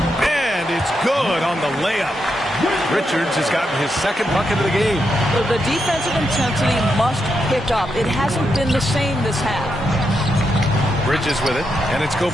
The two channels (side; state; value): both; normal; correlation 0.83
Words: And it's good on the layup. Richards has gotten his second bucket of the game. Well, the defensive intensity must pick up. It hasn't been the same this half. Bridges with it, and it's